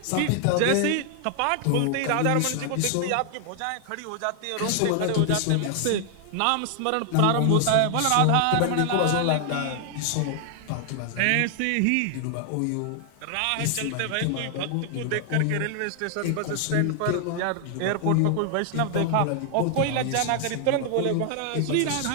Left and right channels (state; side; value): different; both; correlation 0.00